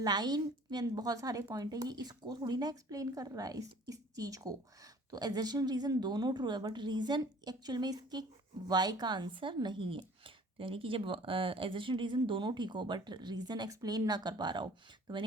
में बहुत सारे पॉइंट है, ये इसको थोड़ी ना एक्सप्लेन कर रहा है, इस चीज़ को। तो एजर्शन रीज़न दोनों ट्रू है, बट रीज़न एक्चुअल में इसके वाई का आंसर नहीं है। तो यानी कि जब एजर्शन रीज़न दोनों ठीक हो बट रीज़न एक्सप्लेन ना कर पा रहा हो, तो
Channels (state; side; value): normal; both; correlation 0.51